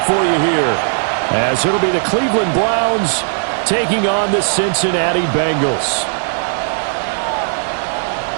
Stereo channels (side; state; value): left; silent; digital silence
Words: for you here, as it'll be the Cleveland Browns taking on the Cincinnati Bengals.